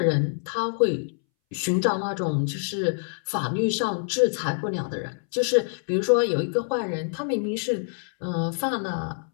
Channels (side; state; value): right; silent; 61 dB below the other